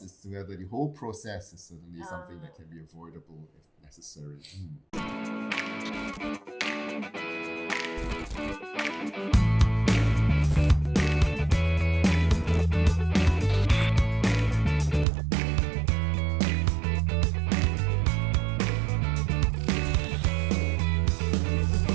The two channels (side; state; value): left; drops out; at 15.1 s